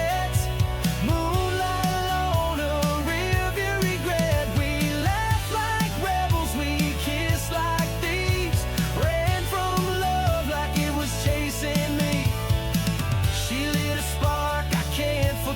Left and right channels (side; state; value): both; identical; correlation 1.00